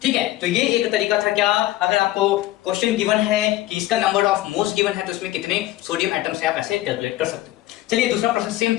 ठीक है, तो ये एक तरीका था। क्या, अगर आपको क्वेश्चन गिवन है कि इसका नंबर ऑफ मोल्स गिवन है तो इसमें कितने सोडियम एटम्स है, आप ऐसे कैलकुलेट कर सकते हो। चलिए दूसरा प्रश्न सेम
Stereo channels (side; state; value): right; quieter; 16.0 dB